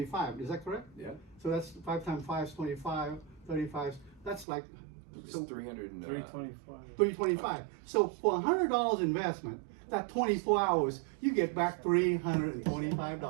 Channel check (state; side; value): drops out; left; at 4.5 s